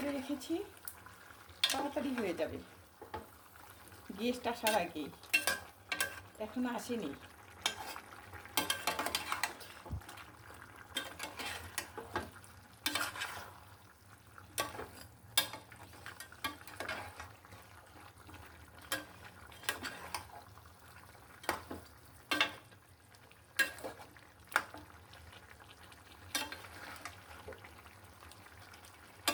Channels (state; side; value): identical; both; correlation 1.00